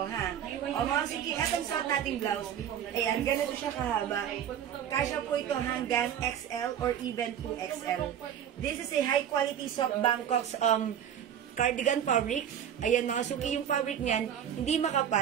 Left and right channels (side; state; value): left; quieter; 9.5 dB